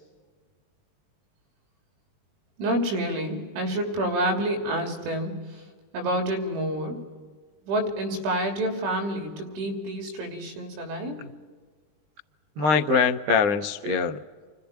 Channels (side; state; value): left; late; 20 ms